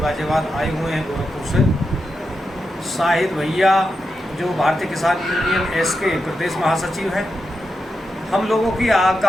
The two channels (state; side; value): normal; both; correlation 0.88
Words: गाजियाबाद आए हुए हैं गोरखपुर से। शाहिद भैया, जो भारतीय किसान यूनियन एस के प्रदेश महासचिव हैं। हम लोगों की